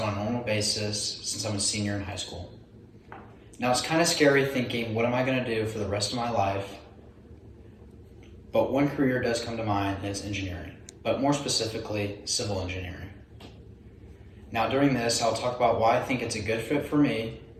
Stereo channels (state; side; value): identical; both; correlation 1.00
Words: on a normal basis since I'm a senior in high school. Now it's kind of scary thinking, what am I going to do for the rest of my life? But one career does come to mind, and it's engineering, but more specifically, civil engineering. Now during this, I'll talk about why I think it's a good fit for me